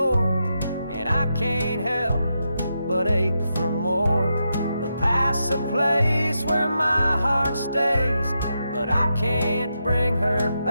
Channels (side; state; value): both; inverted; correlation -0.85